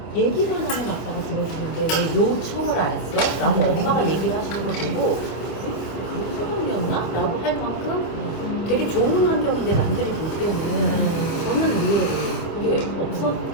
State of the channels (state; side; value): late; right; 25 ms